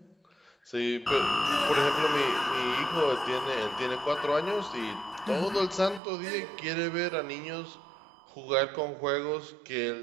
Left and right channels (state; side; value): drops out; left; at 6.0 s